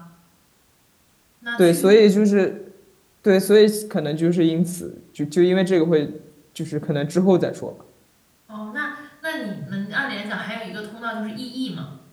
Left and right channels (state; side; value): identical; both; correlation 1.00